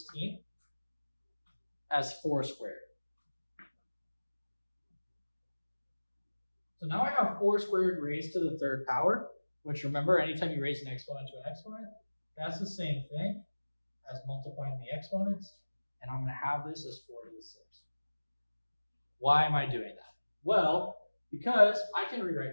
as 4 squared. So now I have 4 squared raised to the third power, which remember, anytime you raise an exponent to an exponent, that's the same thing as multiplying the exponents. And I'm going to have this as 4 to the 6th. Why am I doing that? Well, because I can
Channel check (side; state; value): both; inverted; correlation -1.00